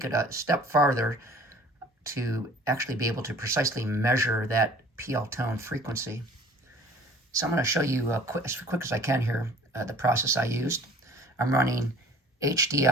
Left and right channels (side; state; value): both; normal; correlation 0.50